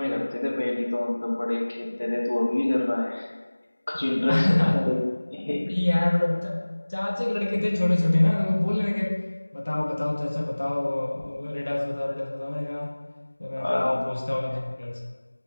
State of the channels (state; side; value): inverted; both; correlation -1.00